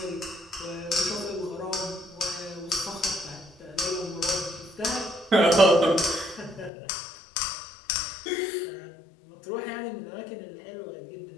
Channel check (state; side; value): drops out; right; at 6.7 s